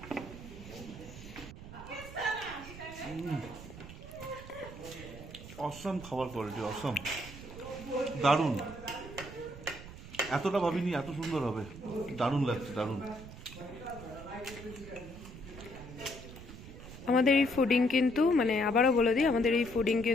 অসম খাবার কোয়ালিটি, অসম, দারুণ। এতটা ভাবিনি এত সুন্দর হবে, দারুণ লাগছে, দারুণ। আমাদের এই ফুডিং কিন্তু, মানে আবারও বলে দিই, আমাদের এই ফুডিং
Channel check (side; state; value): right; noise; rumble, 14 dB below the sound